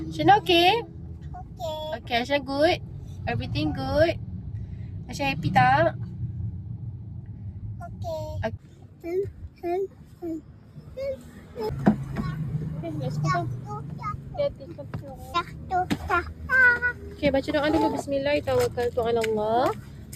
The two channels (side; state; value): both; identical; correlation 1.00